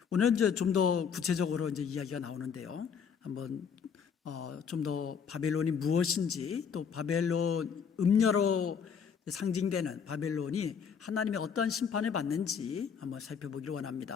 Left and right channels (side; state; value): right; quieter; 6.8 dB